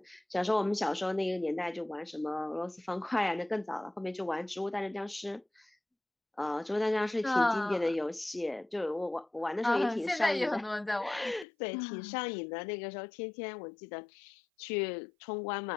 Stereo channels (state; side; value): drops out; right; at 11.5 s